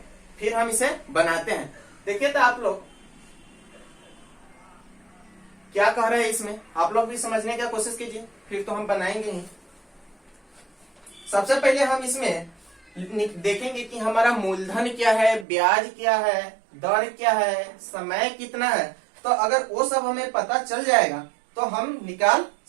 फिर हम इसे बनाते हैं। देखिए तो आप लोग क्या कह रहे हैं इसमें, आप लोग भी समझने की कोशिश कीजिए, फिर तो हम बनाएंगे ही। सबसे पहले हम इसमें देखेंगे कि हमारा मूलधन क्या है, ब्याज क्या है, दर क्या है, समय कितना है। तो अगर वो सब हमें पता चल जाएगा तो हम निकाल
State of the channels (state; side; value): drops out; left; at 15.5 s